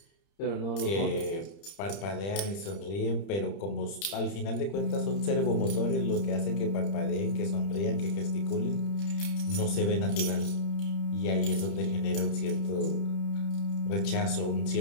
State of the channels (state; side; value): late; right; 30 ms